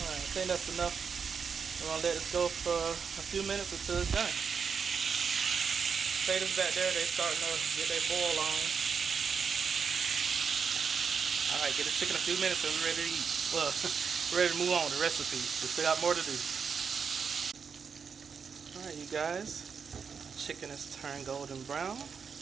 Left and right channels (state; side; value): quieter; left; 6.1 dB